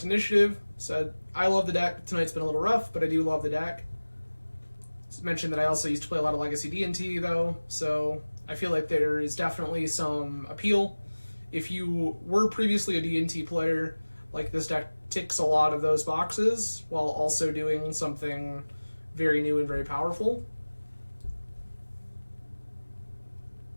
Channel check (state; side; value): inverted; both; correlation -1.00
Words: initiative. Said, I love the deck. Tonight's been a little rough, but I do love the deck. Mentioned that I also used to play a lot of Legacy D&T, though, so I feel like there is definitely some appeal. If you were previously a D&T player, like this deck ticks a lot of those boxes, while also doing something very new and very powerful.